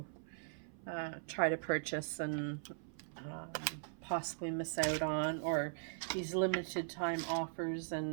try to purchase and possibly miss out on, or these limited time offers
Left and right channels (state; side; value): silent; left; 51 dB below the other